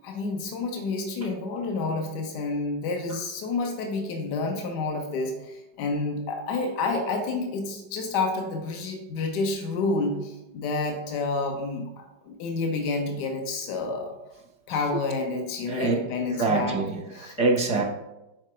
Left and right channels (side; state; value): right; late; 5.1 ms